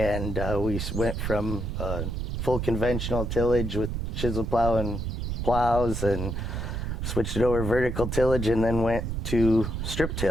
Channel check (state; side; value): noise; right; rumble, 3 dB below the sound